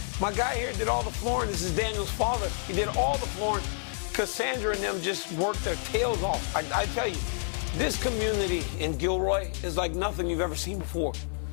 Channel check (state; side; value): silent; right; 59 dB below the other